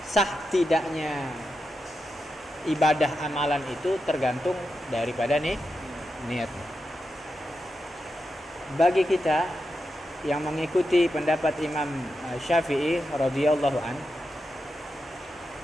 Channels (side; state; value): both; normal; correlation 0.88